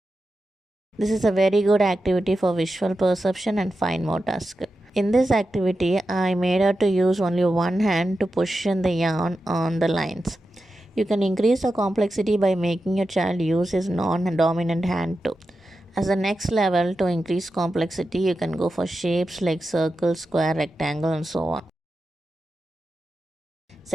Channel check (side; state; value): both; normal; correlation 0.90